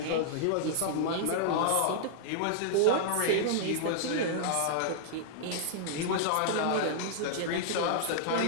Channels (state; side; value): different; both; correlation -0.01